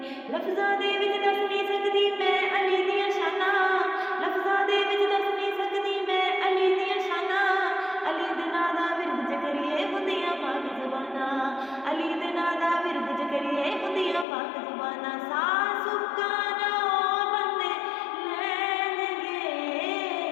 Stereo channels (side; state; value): right; drops out; at 14.2 s